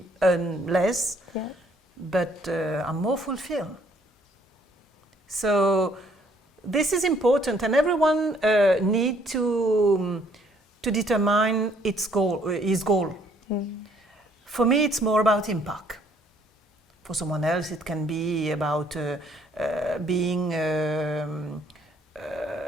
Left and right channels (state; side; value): normal; both; correlation 0.64